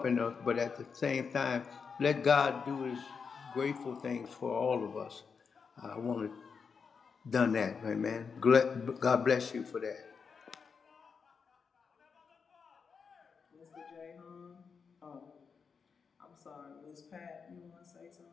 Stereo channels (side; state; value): right; quieter; 5.7 dB